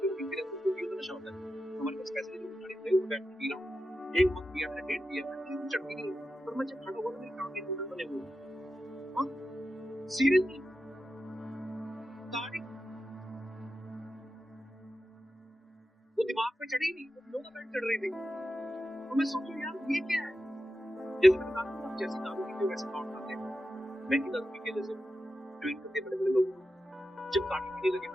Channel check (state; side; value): normal; both; correlation 0.90